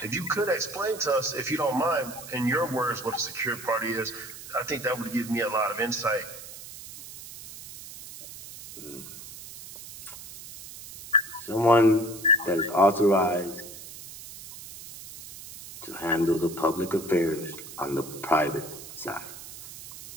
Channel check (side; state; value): right; noise; hiss, 14 dB below the sound